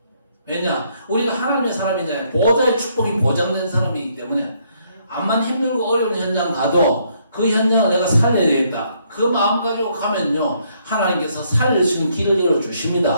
왜냐? 우리가 하나님의 사람이잖아요. 보좌의 축복이 보장된 사람이기 때문에 암만 힘들고 어려운 현장 가도 그 현장을 내가 살려야 되겠다. 그 마음 가지고 가면요, 하나님께서 살릴 수 있는 길을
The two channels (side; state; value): both; inverted; correlation -0.70